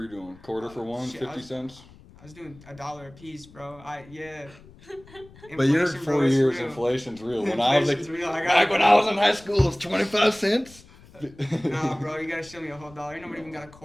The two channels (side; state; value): left; noise; rumble, 23 dB below the sound